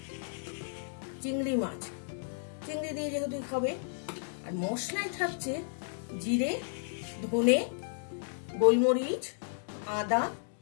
চিংড়ি মাছ, চিংড়ি দিয়ে যেহেতু হবে। আর মশলায় থাকছে জিরে, ধনে, গোলমরিচ, আদা,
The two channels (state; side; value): silent; right; digital silence